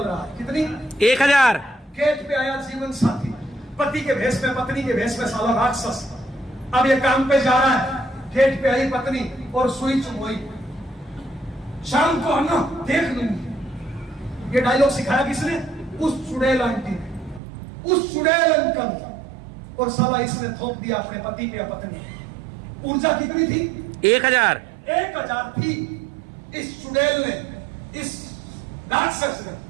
रहा है। कितनी? 1000। गेट पे आया जीवन साथी, पति के भेष में, पत्नी के भेष में, साला राक्षस। अब ये काम पे जा रहा है, गेट पे आई पत्नी और सुई चुभोई, शाम को आना देख लूंगी। ये डायलॉग सिखाया किसने? उस चुड़ैल आंटी ने, उस चुड़ैल अंकल ने, और साला इसने थोप दिया अपने पति पे या पत्नी। ऊर्जा कितनी थी? 1000। 1000 थी। इस चुड़ैल ने, इस राक्षस ने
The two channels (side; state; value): left; drops out; at 17.4 s